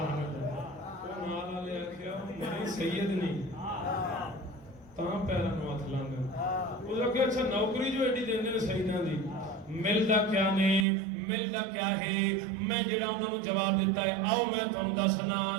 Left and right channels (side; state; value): left; drops out; at 10.9 s